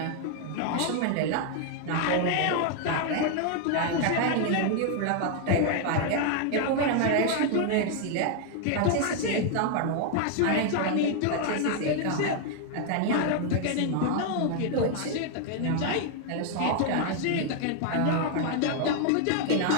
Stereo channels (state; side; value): different; both; correlation 0.00